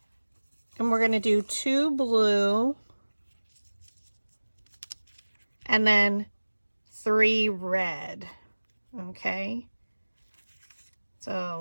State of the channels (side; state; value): both; inverted; correlation -1.00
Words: And we're going to do 2 blue and then 3 red. Okay,